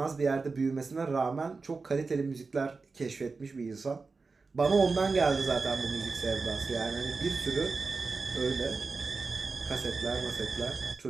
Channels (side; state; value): left; quieter; 4.2 dB